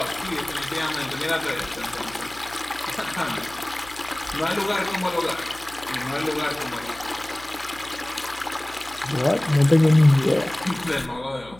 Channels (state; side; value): noise; left; hum, 22 dB below the sound